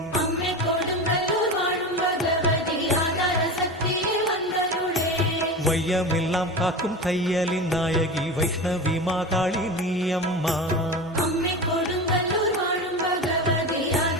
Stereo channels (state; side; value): normal; both; correlation 0.27